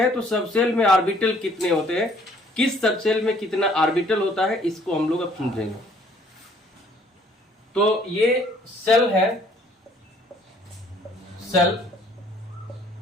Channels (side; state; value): both; normal; correlation 0.60